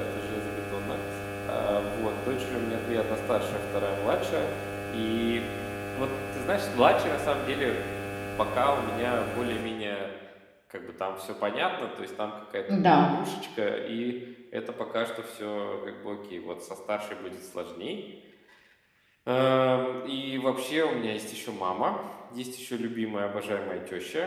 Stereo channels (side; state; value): both; identical; correlation 1.00